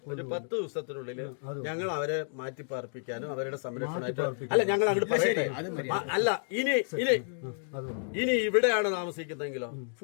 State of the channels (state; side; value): silent; right; digital silence